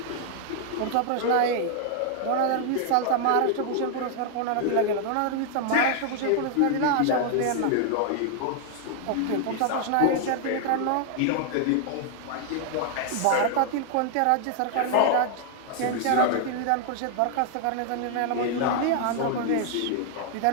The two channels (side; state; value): both; different; correlation 0.00